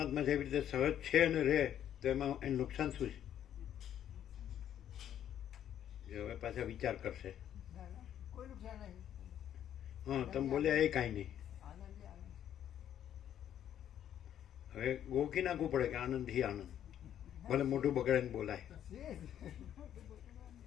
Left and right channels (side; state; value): right; quieter; 10.4 dB